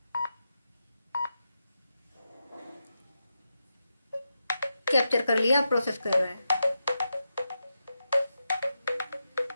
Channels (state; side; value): inverted; both; correlation -0.88